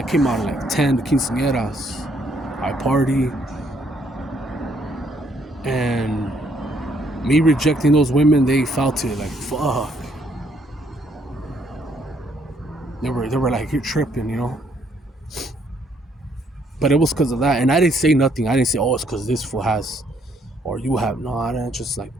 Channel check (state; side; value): normal; both; correlation 0.69